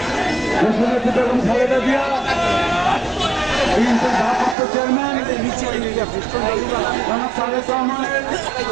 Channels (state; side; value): drops out; left; at 4.5 s